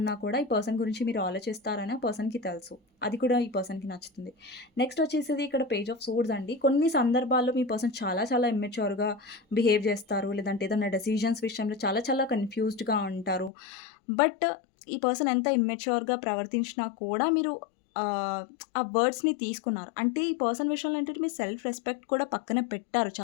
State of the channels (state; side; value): drops out; right; at 13.5 s